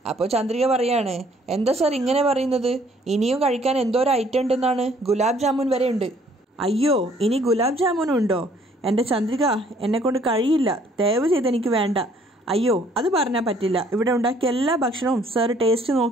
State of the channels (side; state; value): both; normal; correlation 0.61